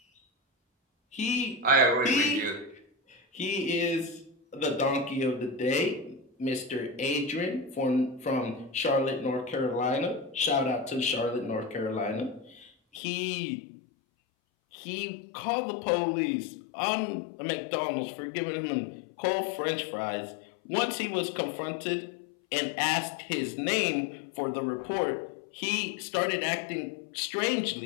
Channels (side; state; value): right; drops out; at 13.0 s